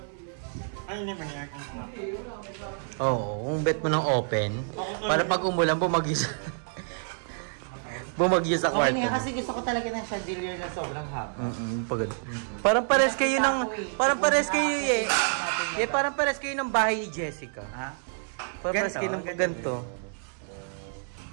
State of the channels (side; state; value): left; silent; digital silence